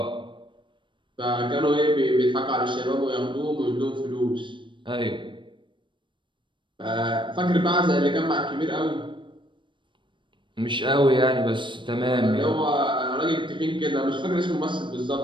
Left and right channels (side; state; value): left; late; 0.24 ms